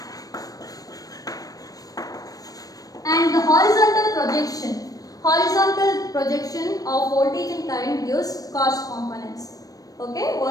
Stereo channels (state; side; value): late; right; 0.18 ms